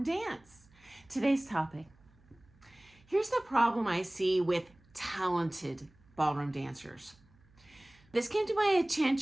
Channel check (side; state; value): right; noise; hum, 29 dB below the sound